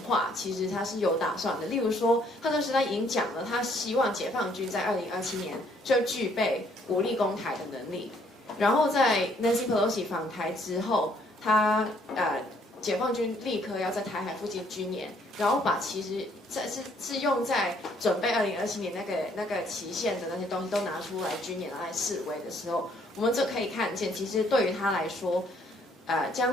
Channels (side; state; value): both; normal; correlation 0.65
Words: 话，其实他是有打算的。例如说，他当时他已经讲了，他希望解放军在2027年就具备武力攻台的能力。然后在 Nancy Pelosi 访台之后，他解放军立刻要在台海附近军演，然后把其实是用在准备2027年那个期限的那些东西都拿出来军演来示威的时候，我们就可以看见，其实对于他来说。